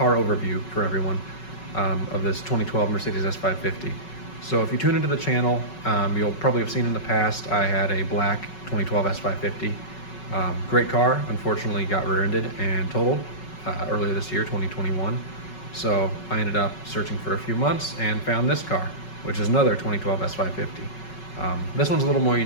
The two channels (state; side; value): late; right; 5.4 ms